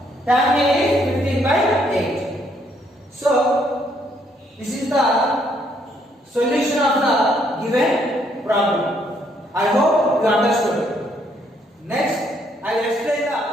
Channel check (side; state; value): both; normal; correlation 0.70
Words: tan A is 15 by 8. So this is the solution of the given problem. I hope you understood. Next, I will explain